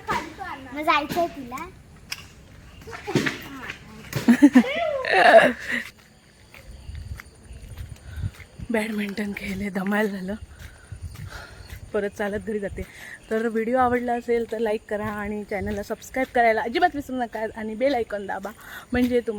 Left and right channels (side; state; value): both; identical; correlation 1.00